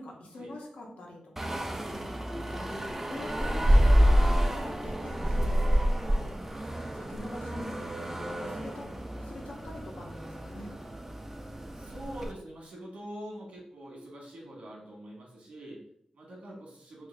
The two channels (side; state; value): both; normal; correlation 0.98